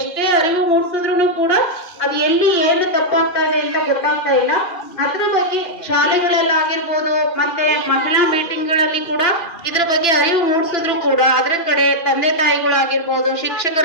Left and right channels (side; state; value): right; late; 2.4 ms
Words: ಅರಿವು ಮೂಡಿಸಿದ್ರು ಕೂಡ ಅದು ಎಲ್ಲಿ ಏನು ತಪ್ಪಾಗ್ತಾ ಇದೆ ಅಂತ ಗೊತ್ತಾಗ್ತಾ ಇಲ್ಲ. ಅದ್ರ ಬಗ್ಗೆ ಶಾಲೆಗಳಲ್ಲಾಗಿರ್ಬೋದು, ಮತ್ತೆ ಮಹಿಳಾ ಮೀಟಿಂಗ್ಗಳಲ್ಲಿ ಕೂಡ ಇದ್ರ ಬಗ್ಗೆ ಅರಿವು ಮೂಡಿಸಿದ್ರು ಕೂಡ ಅದ್ರ ಕಡೆ ತಂದೆ ತಾಯಿಗಳಾಗಿರ್ಬೋದು,